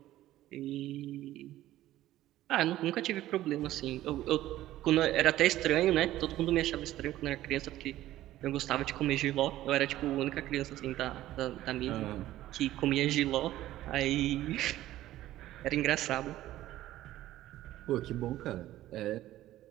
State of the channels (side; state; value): left; quieter; 14.5 dB